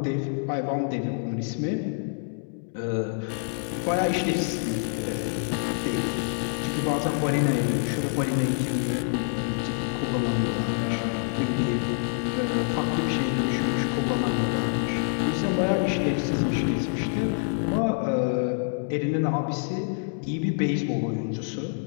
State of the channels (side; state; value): right; silent; digital silence